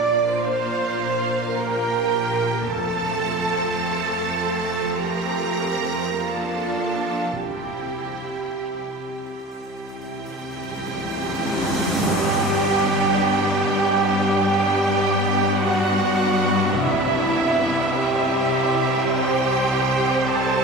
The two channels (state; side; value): normal; both; correlation 0.40